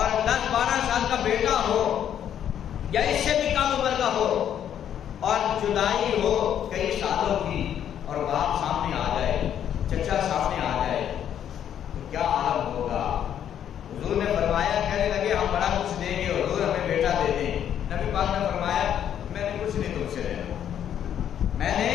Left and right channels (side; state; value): right; quieter; 9.7 dB